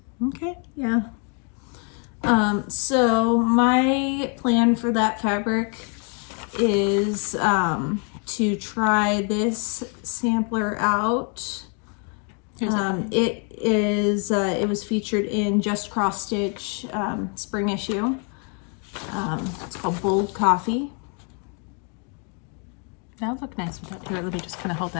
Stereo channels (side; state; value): right; quieter; 39.0 dB